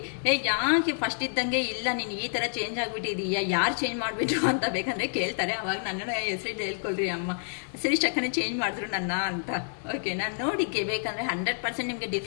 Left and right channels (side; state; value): right; silent; 59 dB below the other